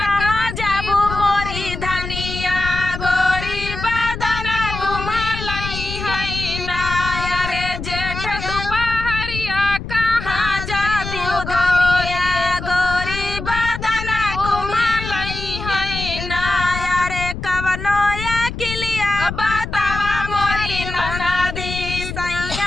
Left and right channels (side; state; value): left; noise; rumble, 7 dB below the sound